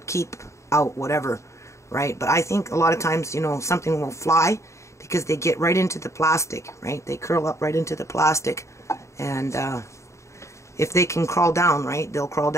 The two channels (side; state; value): right; late; 0.14 ms